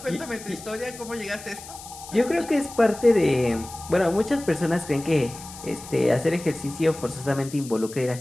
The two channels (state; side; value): noise; left; hiss, 15 dB below the sound